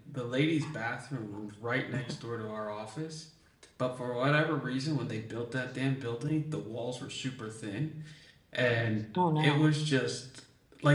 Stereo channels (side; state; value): both; identical; correlation 1.00